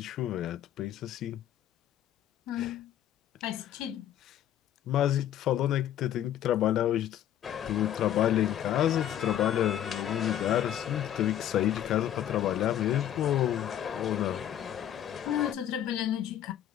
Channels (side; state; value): right; quieter; 11.1 dB